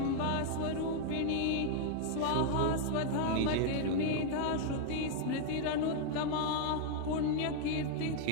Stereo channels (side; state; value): both; different; correlation 0.00